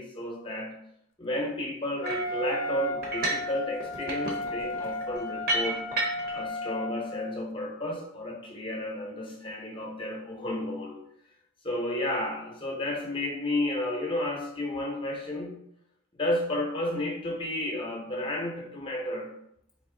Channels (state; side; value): normal; both; correlation 0.23